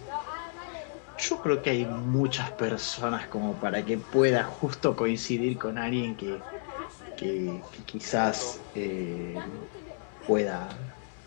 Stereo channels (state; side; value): silent; right; digital silence